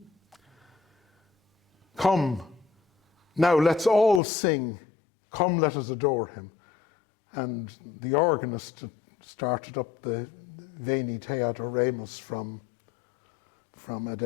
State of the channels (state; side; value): drops out; right; at 4.2 s